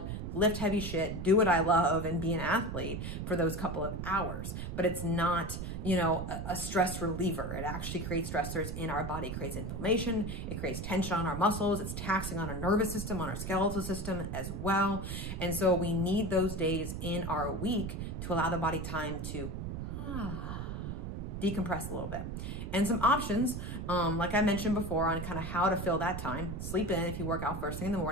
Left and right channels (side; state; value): right; noise; rumble, 5 dB below the sound